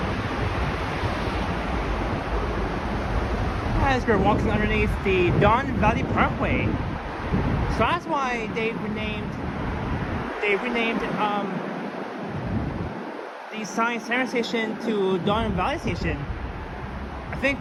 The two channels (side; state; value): both; identical; correlation 1.00